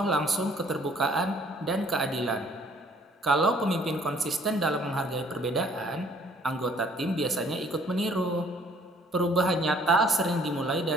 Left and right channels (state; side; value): normal; both; correlation 0.59